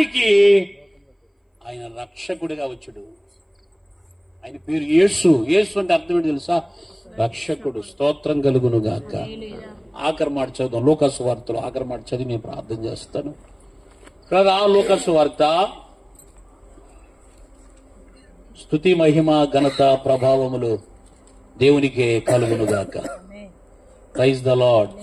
ఆయన రక్షకుడిగా వచ్చాడు. ఆయన పేరు యేసు. యేసు అంటే అర్థం ఏంటి తెలుసా? రక్షకుడు. స్తోత్రం కలుగును గాక. ఆఖరి మాట చదువుతాం. లూకాసు వార్తలో ఆఖరి మాట చదివి నేను ప్రార్థన చేస్తాను కదా. లూకాసు వార్త. స్తుతి మహిమ ఘనత ప్రభావములు దేవునికే కలుగును గాక. Praise the lord,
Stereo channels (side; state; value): both; identical; correlation 1.00